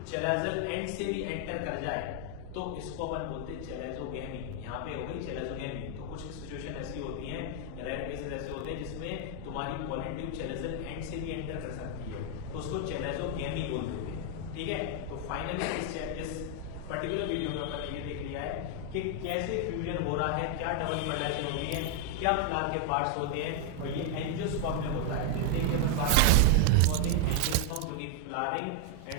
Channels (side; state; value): both; different; correlation 0.00